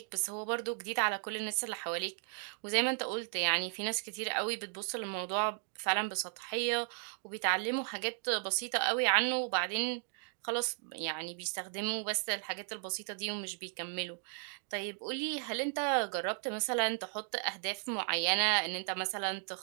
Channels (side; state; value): left; silent; 54 dB below the other